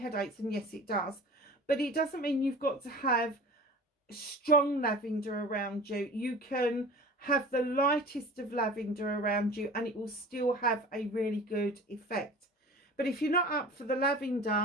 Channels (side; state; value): both; normal; correlation 0.40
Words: and yes it does, but it doesn't mean you've got to have strong lavender around you. You can have the lightest of lavender around you and it will still have a really good effect. But if you're not up for the